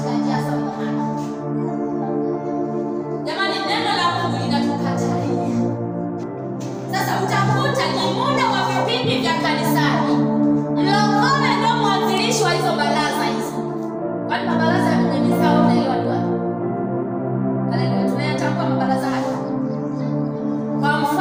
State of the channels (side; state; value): both; identical; correlation 1.00